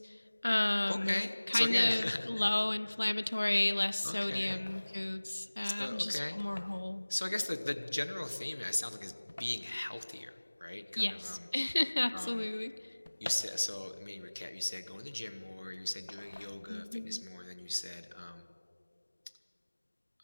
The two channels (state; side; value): inverted; both; correlation -1.00